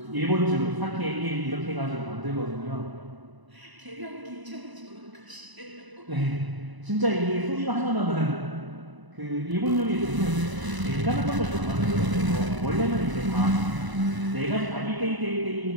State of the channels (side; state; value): left; late; 1.0 ms